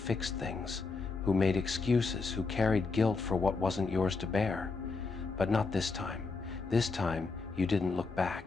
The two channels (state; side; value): quieter; right; 4.2 dB